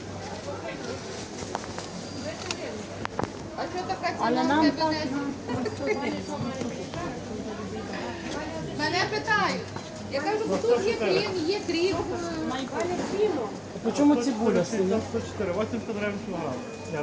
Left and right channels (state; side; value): identical; both; correlation 1.00